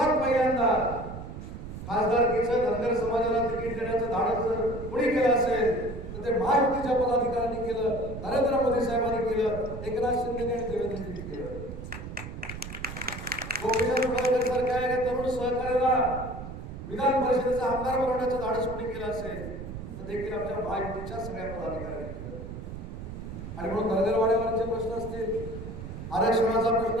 पहिल्यांदा खासदारकीचं धनगर समाजाला तिकीट देण्याचं धाडस जर कुणी केलं असेल तर ते महायुतीच्या पदाधिकाऱ्यांनी केलं, नरेंद्र मोदी साहेबांनी केलं, एकनाथ शिंदे आणि देवेंद्रजींनी केलं. गोपीचंद पडळकर सारख्या तरुण सहकार्याला विधान परिषदेचा आमदार बनवण्याचं धाडस कोणी केलं असेल तर देखील आमच्या महायुतीच्या सगळ्या पदाधिकाऱ्यांनी केलं. आणि म्हणून धनगरवाड्यावरचे प्रश्न असतील, आरक्षणाचा प्रश्न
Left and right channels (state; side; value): noise; right; rumble, 9 dB below the sound